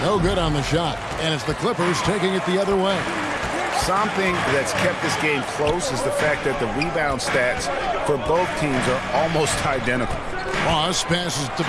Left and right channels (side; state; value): both; identical; correlation 1.00